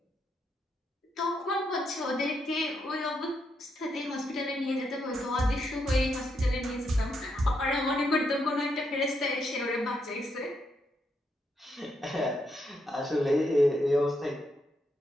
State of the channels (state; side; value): normal; both; correlation 0.80